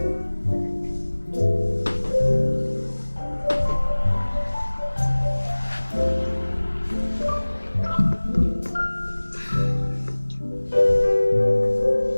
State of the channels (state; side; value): inverted; both; correlation -1.00